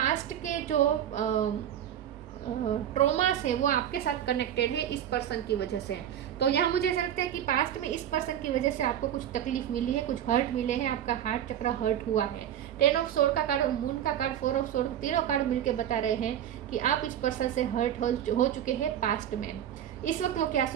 के जो ट्रॉमास है वो आपके साथ कनेक्टेड है इस पर्सन की वजह से। तो यहाँ मुझे ऐसा लगता है कि पास्ट में इस पर्सन की वजह से आपको कुछ तकलीफ मिली है, कुछ हर्ट मिले हैं, आपका हार्ट चक्र हर्ट हुआ है। 10 ऑफ सोर्ड का कार्ड और मून का कार्ड, 4 ऑफ सोर्ड, तीनों कार्ड मिलके बता रहे हैं कि आप इस पर्सन से हर्ट हो चुके हैं पास्ट में। इस वक्त वो क्या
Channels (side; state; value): left; quieter; 10.5 dB